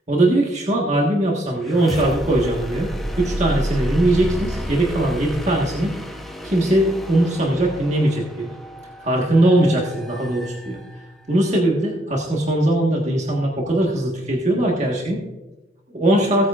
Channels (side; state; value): both; normal; correlation 0.71